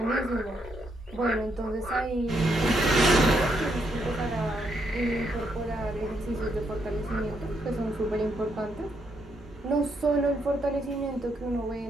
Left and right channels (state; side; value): normal; both; correlation 0.76